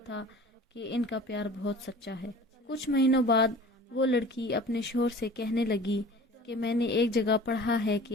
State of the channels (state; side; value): normal; both; correlation 0.43